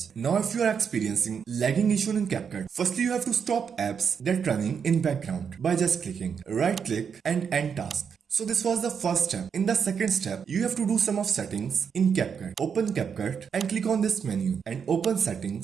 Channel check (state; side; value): quieter; left; 6.8 dB